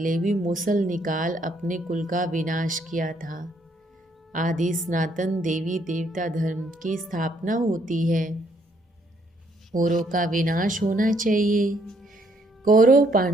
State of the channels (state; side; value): normal; both; correlation 0.69